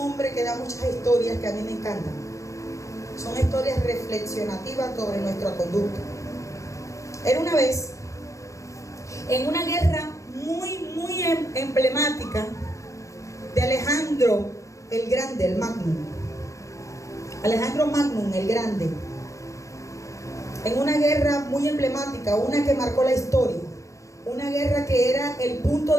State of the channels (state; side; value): late; right; 0.15 ms